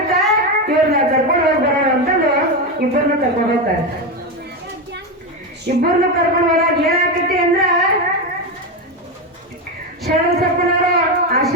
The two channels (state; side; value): normal; both; correlation 0.13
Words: ಇವ್ರನ್ನ ಕರ್ಕೊಂಡು ಹೋಗಿ ಬರೋಣ ಅಂತಂದು ಇಬ್ಬರನ್ನ ಕರ್ಕೊಂಡು ಹೋಗ್ತಾರೆ. ಇಬ್ಬರನ್ನ ಕರ್ಕೊಂಡು ಹೋದಾಗ ಏನಾಗ್ತೈತಿ ಅಂದ್ರ, ಶರಣಬಸಪ್ಪನವರು